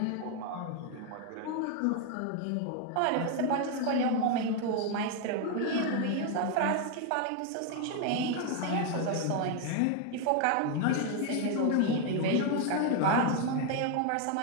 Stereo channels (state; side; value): different; both; correlation 0.01